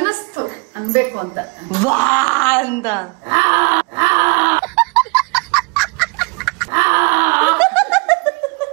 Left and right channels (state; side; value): quieter; left; 31.5 dB